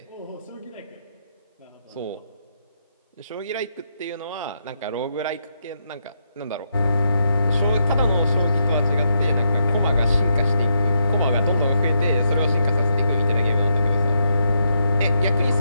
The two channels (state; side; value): inverted; both; correlation -0.81